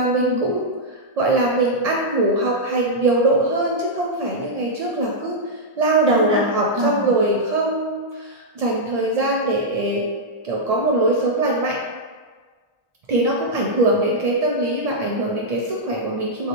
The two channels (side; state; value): left; late; 1.8 ms